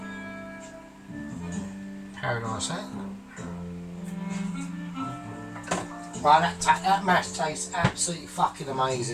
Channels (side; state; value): both; identical; correlation 1.00